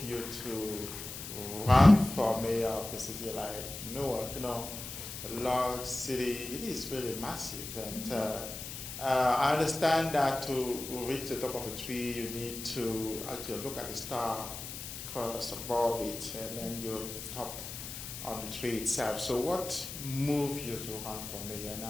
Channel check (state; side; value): noise; left; hiss, 9 dB below the sound